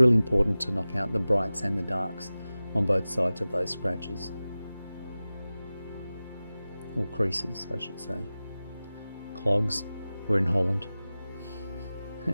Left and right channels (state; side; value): inverted; both; correlation -0.96